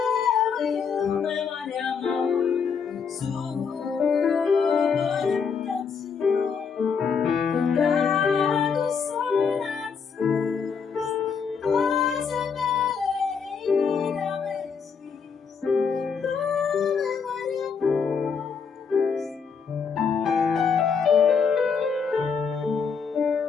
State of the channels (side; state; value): right; quieter; 6.0 dB